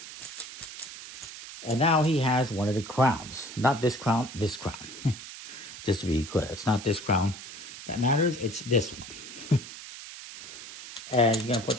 And now he has one of the crowns. Not this crown, this crown. Just to be clear, it's not this crown that matters, it's this one. And you're going to put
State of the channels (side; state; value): right; noise; hiss, 13 dB below the sound